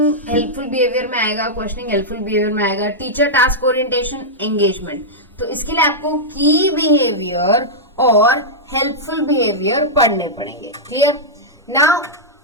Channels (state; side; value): normal; both; correlation -0.08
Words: हेल्पफुल बिहेवियर में आएगा, क्वेश्चनिंग हेल्पफुल बिहेवियर में आएगा, टीचर टास्क ओरिएंटेशन एंगेजमेंट, तो इसके लिए आपको की बिहेवियर और हेल्पफुल बिहेवियर पढ़ने पड़ेंगे, clear. Now